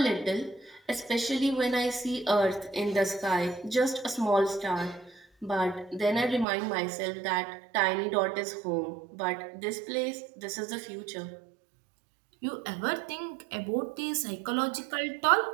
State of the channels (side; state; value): left; drops out; at 6.5 s